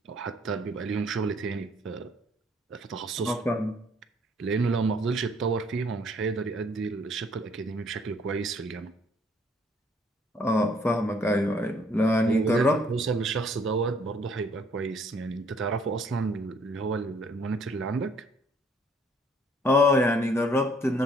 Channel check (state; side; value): normal; both; correlation 0.63